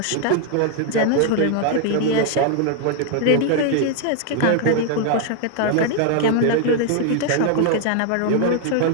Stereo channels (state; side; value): different; both; correlation 0.00